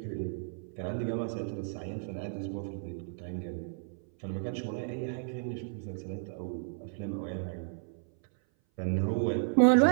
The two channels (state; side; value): silent; left; 56 dB below the other